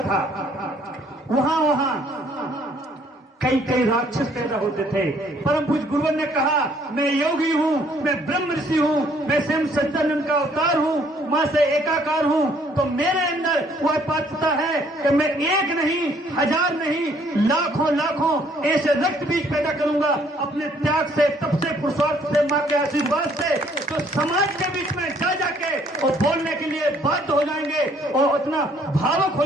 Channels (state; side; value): normal; both; correlation 0.63